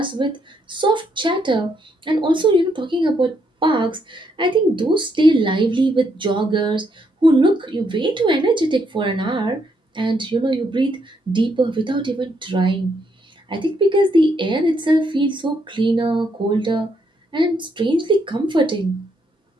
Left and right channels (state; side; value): normal; both; correlation 0.75